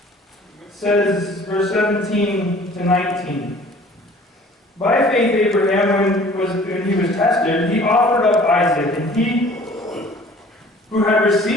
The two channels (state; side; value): normal; both; correlation 0.50